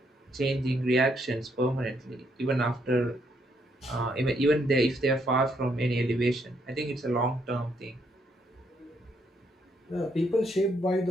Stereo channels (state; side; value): normal; both; correlation 0.73